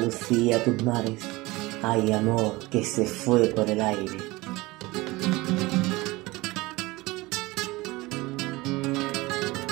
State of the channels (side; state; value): left; quieter; 21.4 dB